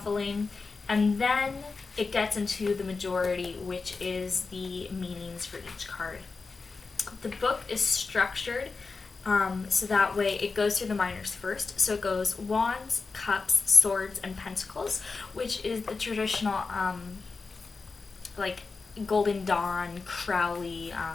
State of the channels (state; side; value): quieter; right; 4.3 dB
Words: and then it gets into the majority, which is the meanings for each card. The book is structured so that way it goes through the minors first. So it goes Wands, Cups, Swords, and Pentacles, which is the traditional Golden Dawn, Crowley,